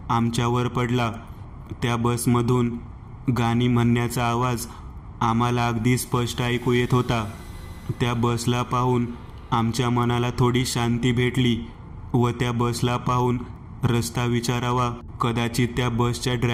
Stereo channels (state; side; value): identical; both; correlation 1.00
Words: आमच्यावर पडला. त्या बसमधून गाणी म्हणण्याचा आवाज आम्हाला अगदी स्पष्ट ऐकू येत होता. त्या बसला पाहून आमच्या मनाला थोडी शांती भेटली व त्या बसला पाहून रस्ता विचारावा. कदाचित त्या बसच्या